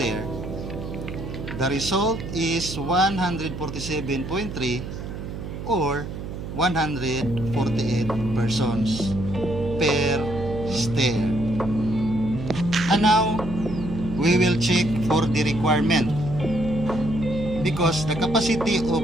the result is 147.3 or 148 persons per stair. And now we will check for the requirement, because the capacity of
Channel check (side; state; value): right; noise; hum, 8 dB below the sound